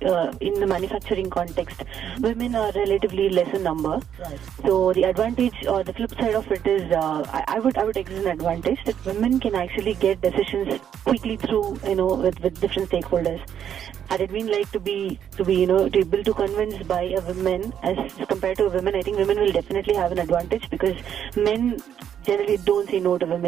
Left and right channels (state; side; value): quieter; left; 9.2 dB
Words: in the manufacturing context, women are relatively less in number. Right. So the advantage or the flip side of it is, I would exert an advantage that women can actually get decisions quickly through, with different stakeholders. Had it been like to be able to convince by a woman as compared to a woman, I think women will definitely have an advantage because men generally don't say no to